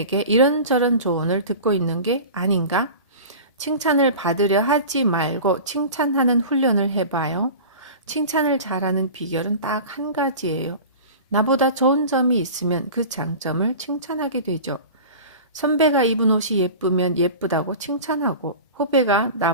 이런저런 조언을 듣고 있는 게 아닌가? 칭찬을 받으려 하지 말고 칭찬하는 훈련을 해봐요. 칭찬을 잘하는 비결은 딱 한 가지예요. 나보다 좋은 점이 있으면 그 장점을 칭찬하게 되죠. 선배가 입은 옷이 예쁘면 예쁘다고 칭찬하고, 후배가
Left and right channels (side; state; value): both; inverted; correlation -0.35